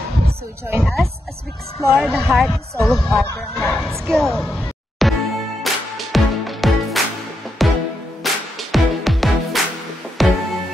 So join us as we explore the heart and soul of our barangay. Let's go!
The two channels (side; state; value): both; normal; correlation 0.83